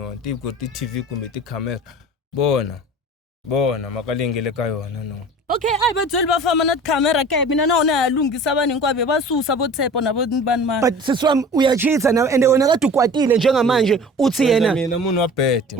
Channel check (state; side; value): normal; both; correlation 0.41